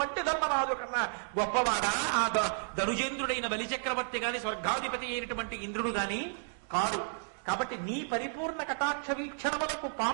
ధర్మరాజు కన్నా గొప్పవాడా ఆ ధనుజేంద్రుడైన బలిచక్రవర్తి గాని, స్వర్గాధిపతి అయినటువంటి ఇంద్రుడు గాని కాదు. కాబట్టి నీ పరిపూర్ణ కటాక్ష వీక్షణములకు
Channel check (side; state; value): left; silent; digital silence